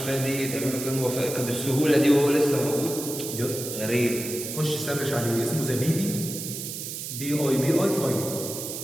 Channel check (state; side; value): noise; right; hiss, 7 dB below the sound